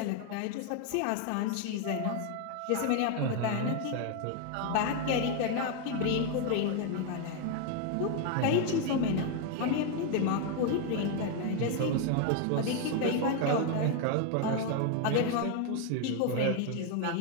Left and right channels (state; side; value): different; both; correlation 0.01